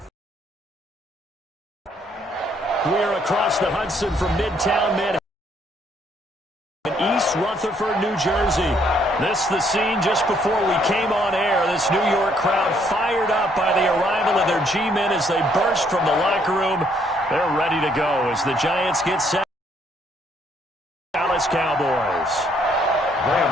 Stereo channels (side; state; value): both; normal; correlation 0.68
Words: me. We're across the Hudson from Midtown Manhattan in East Rutherford, New Jersey. This is the scene just before we came on air. This New York crowd fired up by the arrival of their G-men as they burst from the locker room. They're ready to go as the Giants get set. Dallas Cowboys.